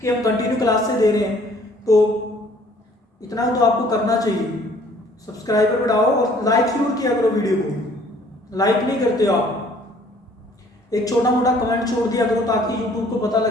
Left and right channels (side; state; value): both; normal; correlation 0.57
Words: कि हम कंटिन्यू क्लास से दे रहे हैं, तो इतना तो आपको करना चाहिए। सब्सक्राइबर बढ़ाओ और लाइक जरूर किया करो वीडियो को। लाइक नहीं करते हो आप, एक छोटा मोटा कमेंट छोड़ दिया करो ताकि यूट्यूब को पता